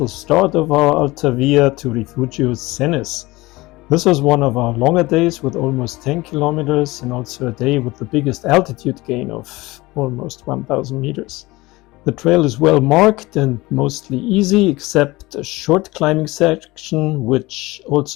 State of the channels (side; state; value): right; quieter; 20.7 dB